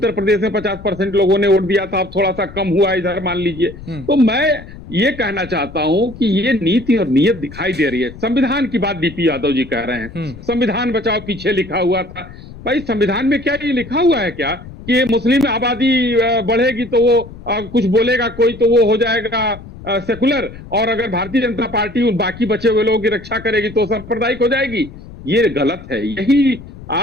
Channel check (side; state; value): left; noise; rumble, 16 dB below the sound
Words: प्रदेश में 50% लोगों ने वोट दिया था, अब थोड़ा सा कम हुआ इधर मान लीजिए। तो मैं ये कहना चाहता हूं कि ये नीति और नीयत दिखाई दे रही है। संविधान की बात डीपी यादव जी कह रहे हैं, संविधान बचाओ पीछे लिखा हुआ था। भाई संविधान में क्या ये लिखा हुआ है क्या कि मुस्लिम आबादी बढ़ेगी तो वो कुछ बोलेगा कोई तो वो हो जाएगा सेकुलर, और अगर भारतीय जनता पार्टी उन बाकी बचे हुए लोगों की रक्षा करेगी तो सांप्रदायिक हो जाएगी? ये गलत है। यही